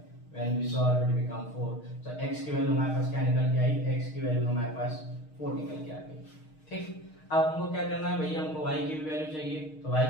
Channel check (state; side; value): late; right; 6.5 ms